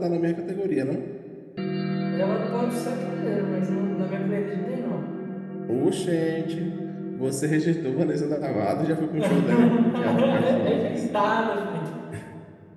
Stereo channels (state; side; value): identical; both; correlation 1.00